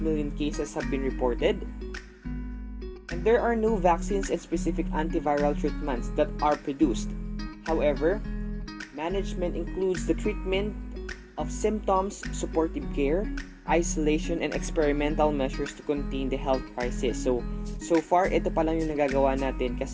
cases have been reported. And there are no vaccines and specific antiviral treatments that are produced. However, management includes the treatment of symptoms, supportive care, isolation, and experimental measures to contain the health crisis. So far, ito pa lang yung nagagawa natin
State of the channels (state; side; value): identical; both; correlation 1.00